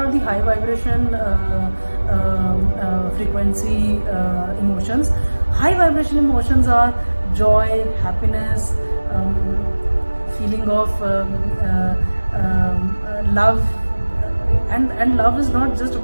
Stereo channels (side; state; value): both; inverted; correlation -1.00